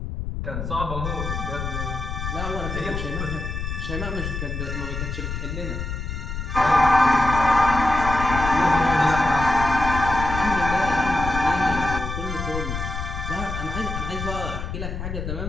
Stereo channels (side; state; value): left; noise; rumble, 5 dB below the sound